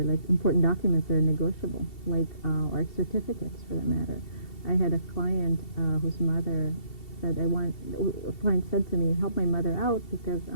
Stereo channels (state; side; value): late; right; 2.7 ms